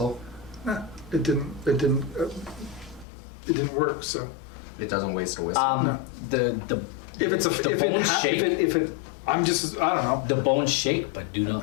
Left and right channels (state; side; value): drops out; right; at 3.1 s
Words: Nah, it didn't work. So It doesn't waste a whistle. No. The if it's a the if it, bones ha- shake. if it I'm just I don't know. The bones shake but do